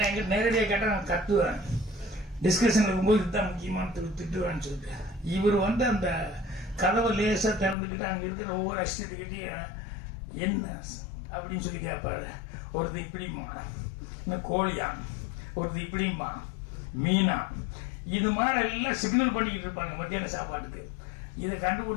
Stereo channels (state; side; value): drops out; right; at 7.8 s